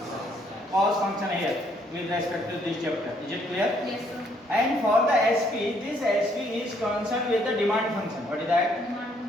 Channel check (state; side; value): normal; both; correlation 0.68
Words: Cost function here with respect to this chapter. Is it clear? Yes, sir. And for the SP, this SP is concerned with the demand function. What is that?